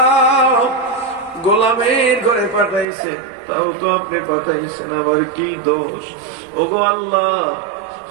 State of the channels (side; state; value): left; drops out; at 2.9 s